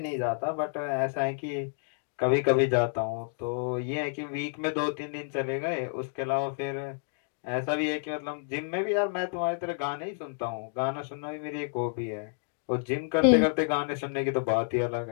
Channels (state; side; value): silent; right; digital silence